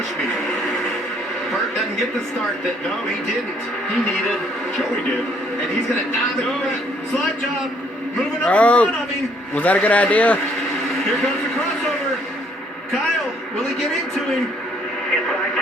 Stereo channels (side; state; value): both; normal; correlation 0.65